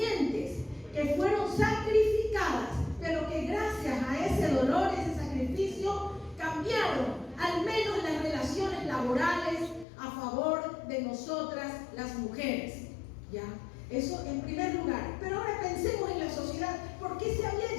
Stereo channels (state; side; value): drops out; right; at 9.9 s